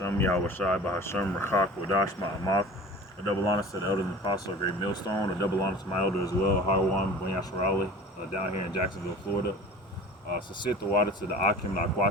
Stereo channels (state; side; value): normal; both; correlation 0.40